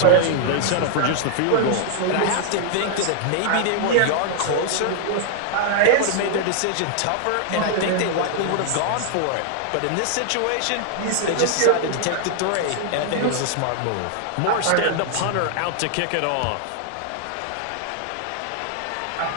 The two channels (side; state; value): both; different; correlation -0.01